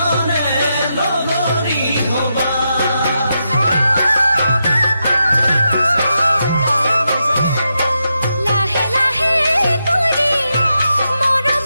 লগৰী হবা লাহে লাহে কৰি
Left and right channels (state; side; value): inverted; both; correlation -0.85